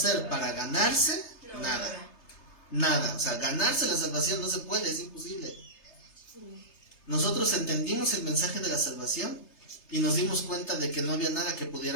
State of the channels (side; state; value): right; late; 3.3 ms